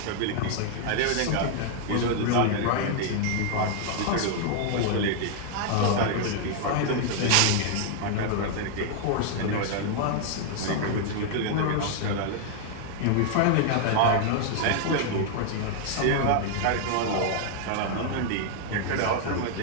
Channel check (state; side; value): different; both; correlation 0.00